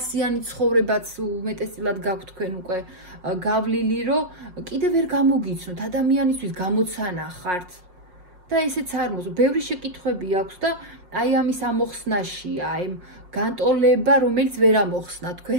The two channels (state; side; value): late; left; 5.5 ms